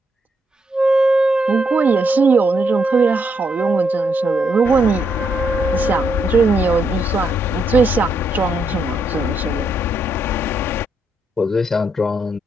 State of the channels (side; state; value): both; normal; correlation 0.77